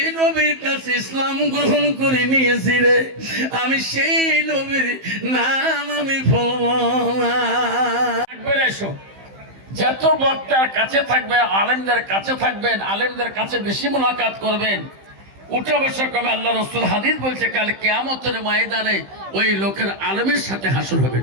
নবীর কাছে ইসলাম গ্রহণ করে নিয়েছি রে, আমি সেই নবীর নাম আমি যত বক্তার কাছে থাকবে, আলেমদের কাছে থাকবেন, আলেমদের কাছে বেশি মুলাকাত করবেন, উঠা বসা কবে। আল্লাহ রসুল হাদিস বলছে, কাল কিয়ামতের ময়দানে ওই লোকের আলেমের সাথে হাসর হবে।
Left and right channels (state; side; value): late; left; 15 ms